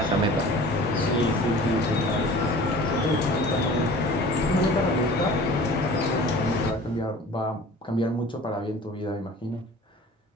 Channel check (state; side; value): normal; both; correlation 0.43